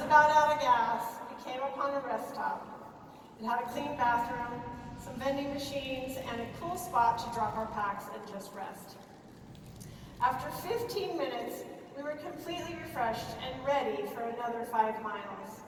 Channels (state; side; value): identical; both; correlation 1.00